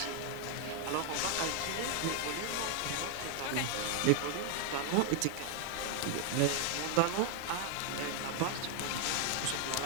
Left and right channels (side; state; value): both; different; correlation 0.00